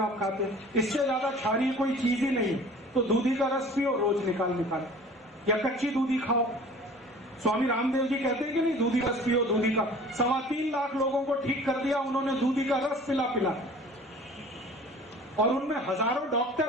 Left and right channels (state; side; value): normal; both; correlation 0.46